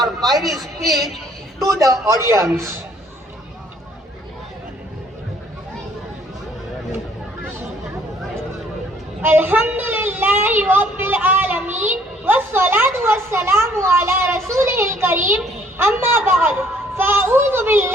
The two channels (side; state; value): both; normal; correlation 0.61